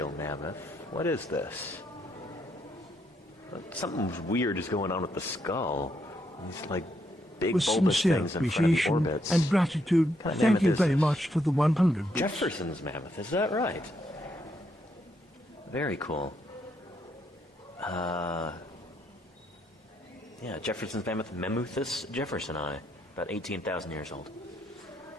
mammoth. What is this? Something weird is going on with the skull. These like big With bulbous sincere things in front of the appreciation orbits. and gratitude, What kind of thank mammoth you is very this? much for the 100 bits. Jefferson's mammoth, is that right? Very cool. Jefferson's mammoth, Mammuthus jeffersoni, about 18,000 years old.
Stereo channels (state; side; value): normal; both; correlation 0.76